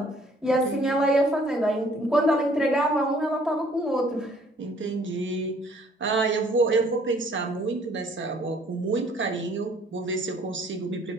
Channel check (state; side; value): normal; both; correlation 0.59